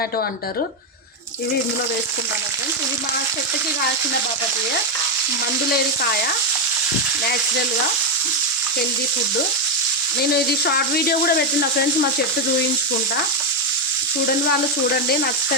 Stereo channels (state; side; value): normal; both; correlation 0.05